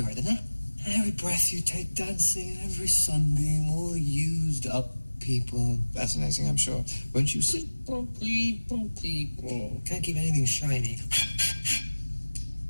doesn't it? Every breath you take dancing and every sunbeam, all used up people. Fascinating, I'm sure. Won't you sit? People. Can't keep anything shiny.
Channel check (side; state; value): both; inverted; correlation -1.00